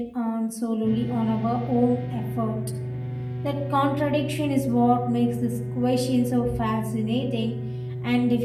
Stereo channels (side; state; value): both; identical; correlation 1.00